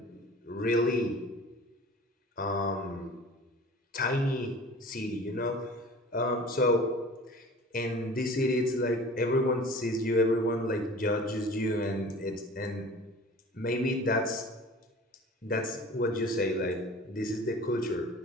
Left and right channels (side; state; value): both; normal; correlation 0.42